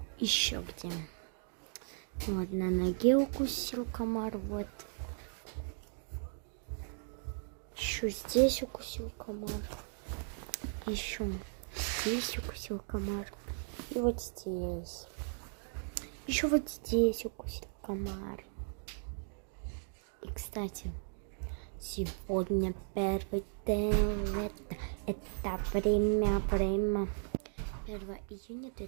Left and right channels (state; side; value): silent; left; 53 dB below the other